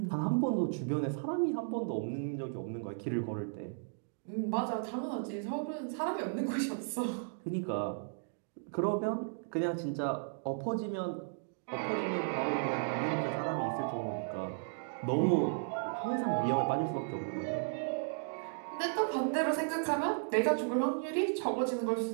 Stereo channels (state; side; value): silent; left; digital silence